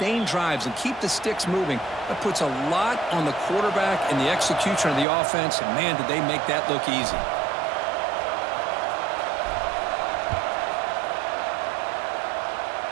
drives and keep the sticks moving, that puts a lot on the quarterback and the execution of the offense, and man, did they make that look easy.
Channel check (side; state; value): left; drops out; at 5.1 s